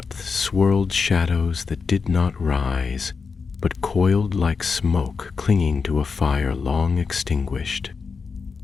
swirled shadows that did not rise, but coiled like smoke clinging to a fire long extinguished.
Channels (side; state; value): right; quieter; 5.1 dB